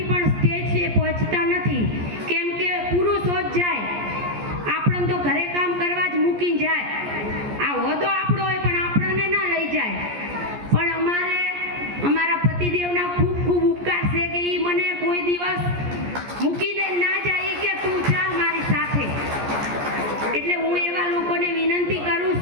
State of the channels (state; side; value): late; left; 14 ms